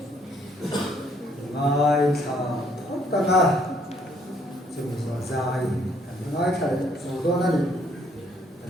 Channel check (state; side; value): normal; both; correlation 0.66